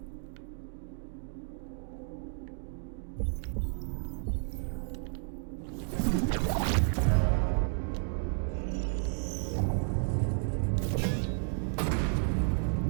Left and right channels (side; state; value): left; silent; digital silence